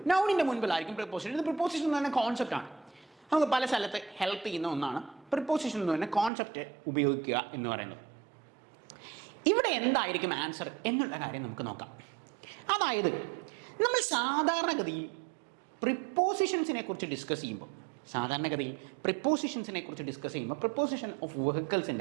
നൗണിന്റെ മുൻപിലായിരിക്കും പ്രിപ്പോസിഷൻ. ഇത് പ്രിപ്പോസിഷൻ എന്ന് പറഞ്ഞ കോൺസെപ്റ്റ് ആണ്. നമുക്ക് പല സ്ഥലത്ത് ഹെൽപ്പ് ചെയ്യുന്ന ഒന്നാണ് പ്രിപ്പോസിഷൻ എന്ന് പറഞ്ഞ കോൺസെപ്റ്റ് ഉപയോഗിക്കുക എന്ന് പറയുന്നത്. ഇവിടെ എന്തായിരിക്കും ആൻസർ എന്നുള്ള കാര്യം നമുക്ക് നോക്കാം. അതായത് നമ്മൾ സാധാരണഗതിയിൽ പ്രിപ്പോസിഷൻസിനെ കുറിച്ച് ഡിസ്കസ് ചെയ്യുമ്പോൾ പ്രിപ്പോസിഷൻ ഓഫ്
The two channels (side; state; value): left; drops out; at 6.3 s